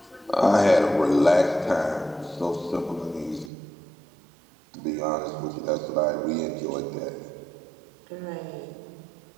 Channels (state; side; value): drops out; left; at 3.5 s